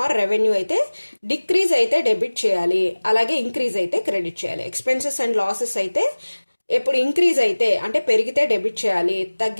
రెవెన్యూ అయితే డిక్రీజ్ అయితే డెబిట్ చేయాలి, అలాగే ఇంక్రీజ్ అయితే క్రెడిట్ చేయాలి. ఎక్స్పెన్సెస్ అండ్ లాసెస్ అయితే ఎప్పుడు ఇంక్రీజ్ అయితే అంటే పెరిగితే డెబిట్ చేయాలి,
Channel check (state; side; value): inverted; both; correlation -1.00